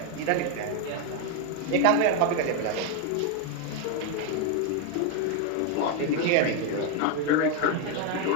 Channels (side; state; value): both; different; correlation 0.01